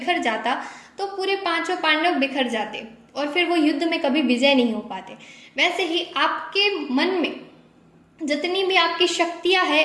जाता तो पूरे पांचों पांडव बिखर जाते और फिर वो युद्ध में कभी विजय नहीं हो पाते। वैसे ही आपके मन में जितनी भी आपकी शक्तियां है,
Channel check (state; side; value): identical; both; correlation 1.00